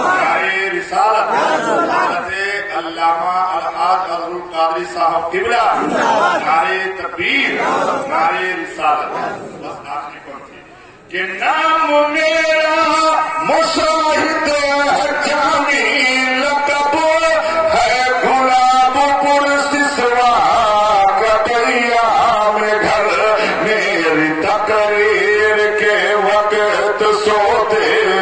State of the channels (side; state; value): both; identical; correlation 1.00